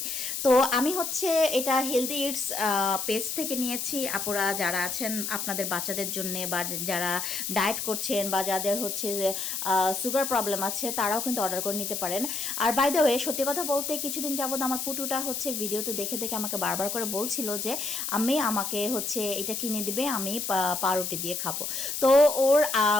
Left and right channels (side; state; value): left; noise; hiss, 3 dB below the sound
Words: তো আমি হচ্ছে এটা হেলদি ইটস পেজ থেকে নিয়েছি। আপুরা যারা আছেন আপনাদের বাচ্চাদের জন্য, বা যারা ডায়েট করছেন, বা যাদের হচ্ছে যে সুগার প্রবলেম আছে, তারাও কিন্তু অর্ডার করে নিতে পারেন। আর বাই দ্য ওয়ে, সত্যি কথা বলতে কিছুদিন যাবত আমার পুটুটা হচ্ছে ভিডিওতে দেখে দেখে আমাকে বারবার করে বলছিল যে আমি আমাকে হচ্ছে এটা কিনে দিবে, আমি পাউরুটি দিয়ে খাবো। তো